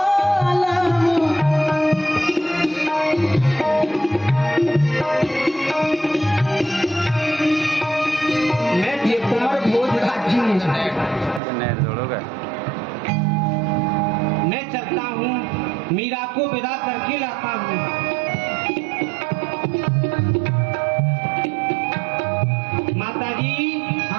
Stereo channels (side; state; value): left; drops out; at 11.4 s